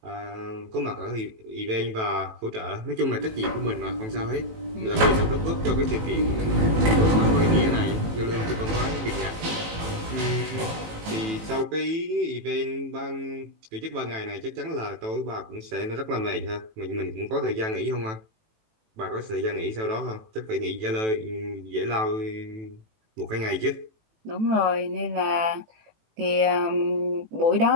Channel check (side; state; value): left; late; 18 ms